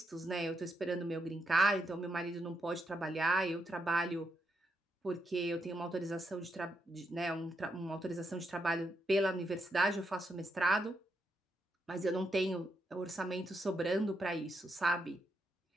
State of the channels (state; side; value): normal; both; correlation 0.81